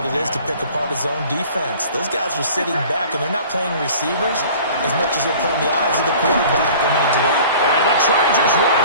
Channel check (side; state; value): both; inverted; correlation -0.46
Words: it is to pick apart his own defense. Those guys are sitting back, and they're not playing receivers as much as they're playing the eyes of the quarterback. And the Chargers